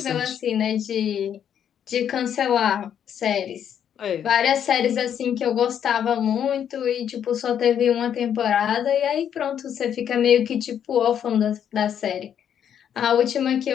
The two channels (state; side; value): quieter; right; 9.0 dB